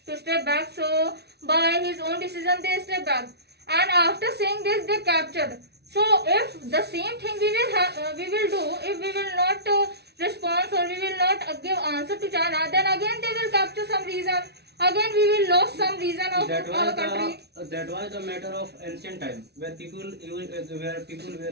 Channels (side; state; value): left; late; 0.48 ms